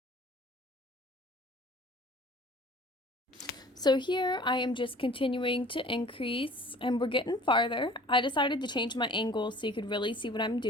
So here I am just continuing to increase, and we're getting farther. I decided to change my angle so you could really see what I'm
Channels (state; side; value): normal; both; correlation 0.48